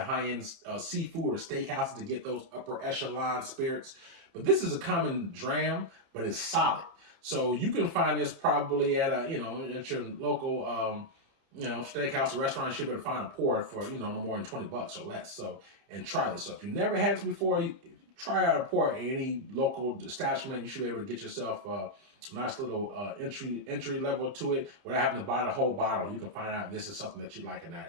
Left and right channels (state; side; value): late; left; 30 ms